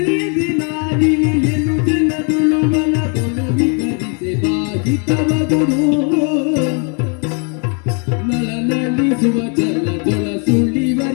ಇಳಿಯನು ಜಲದುಳು ವನದೊಳು ವಿಗರಿಸಿ ಬಾಹಿತವಗುದು ನಳನಳಿಸುವ ಜಲದೊಳ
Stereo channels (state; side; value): quieter; right; 38.3 dB